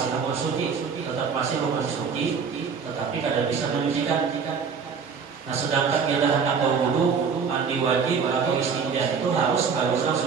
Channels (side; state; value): left; quieter; 5.9 dB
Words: hukum suci, tetapi tidak bisa menyucikan. Nah, sedangkan kita hendak berwudu, mandi wajib atau istinja itu harus bagusnya